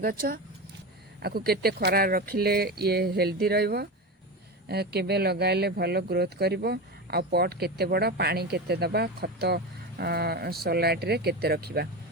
आकु केते खरा रखिले ये हेल्दी रहइबो, केबे लगाइले भलो ग्रोथ करिवो, आ पॉट केते बड़ा, पानी केते दबा, खत सलाइट रे केते रखिबा,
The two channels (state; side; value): normal; both; correlation 0.22